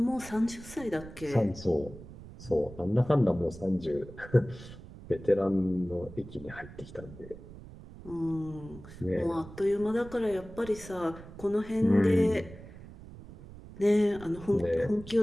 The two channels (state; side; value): noise; right; rumble, 16 dB below the sound